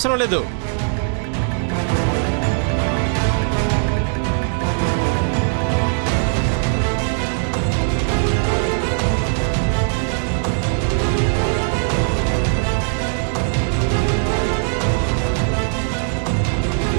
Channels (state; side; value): silent; left; 64 dB below the other